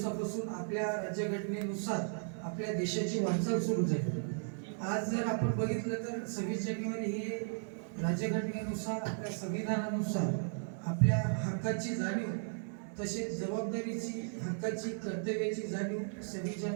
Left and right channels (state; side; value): silent; left; digital silence